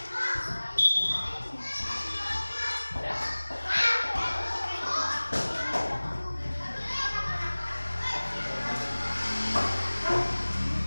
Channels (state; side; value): inverted; both; correlation -1.00